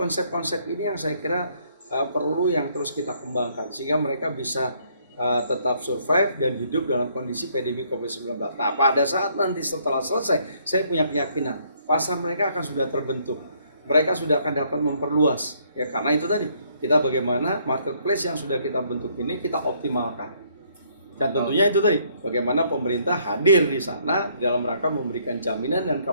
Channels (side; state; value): both; inverted; correlation -0.67